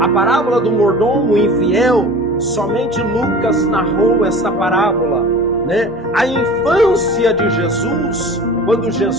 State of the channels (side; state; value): both; normal; correlation 0.39